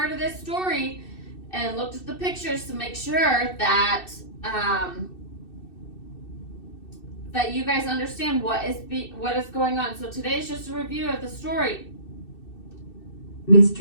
of this story and looked at the pictures to make sure that that you guys understand what is going on. So today is just a review of the story.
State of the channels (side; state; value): right; late; 2.6 ms